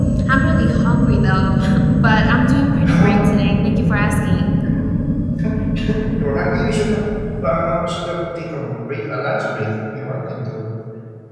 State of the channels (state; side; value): identical; both; correlation 1.00